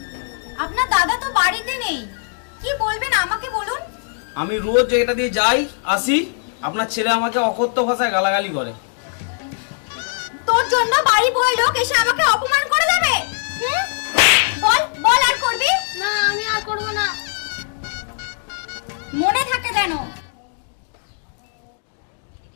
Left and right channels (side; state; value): right; silent; digital silence